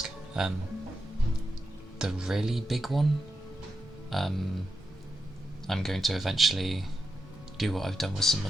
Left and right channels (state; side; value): normal; both; correlation 0.88